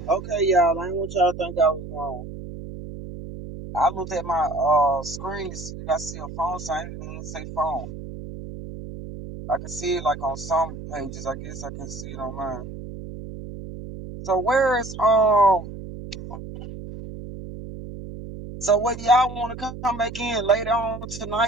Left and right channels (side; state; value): right; noise; hum, 11 dB below the sound